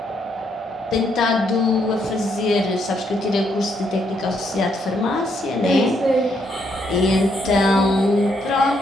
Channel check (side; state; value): both; normal; correlation 0.74